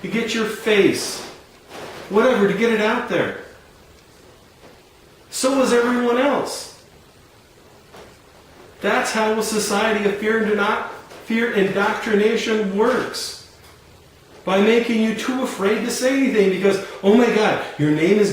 to get your face, whatever, to get it out there, so is everyone else. That's how a society of fear indoctrination works. By making you too afraid to say anything because, oh my God, your name is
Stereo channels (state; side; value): identical; both; correlation 1.00